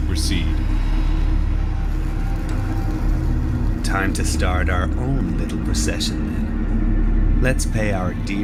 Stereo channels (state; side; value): identical; both; correlation 1.00